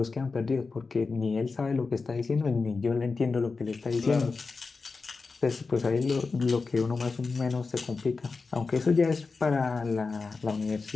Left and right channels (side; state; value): right; quieter; 4.3 dB